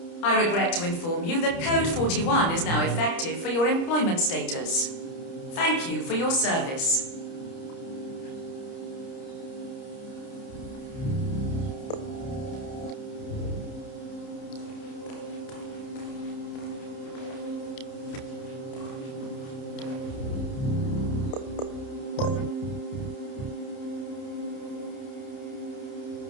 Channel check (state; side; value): late; right; 30 ms